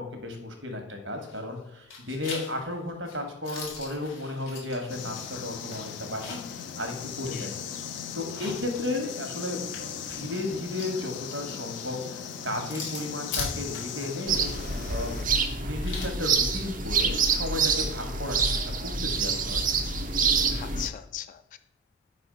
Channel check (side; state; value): both; normal; correlation 0.21